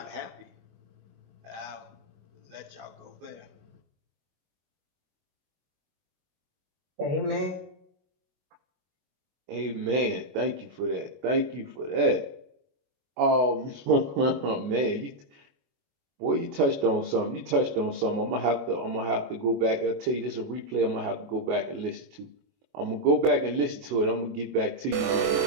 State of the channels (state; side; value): late; left; 21 ms